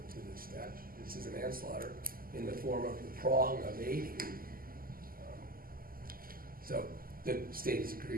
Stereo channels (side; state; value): left; late; 0.42 ms